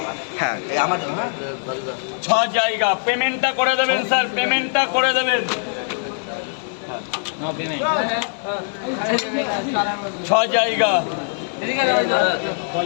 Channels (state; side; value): silent; right; digital silence